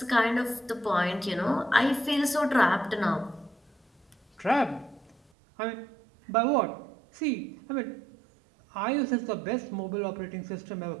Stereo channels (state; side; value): drops out; left; at 5.2 s